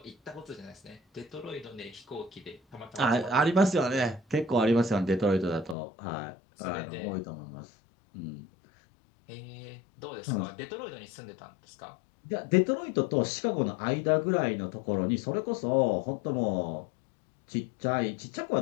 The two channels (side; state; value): right; drops out; at 5.8 s